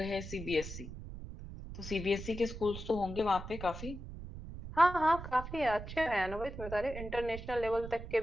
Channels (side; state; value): right; noise; rumble, 10 dB below the sound